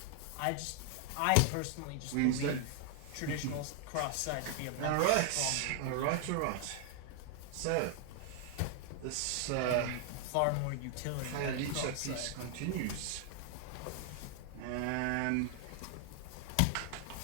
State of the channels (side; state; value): both; different; correlation 0.00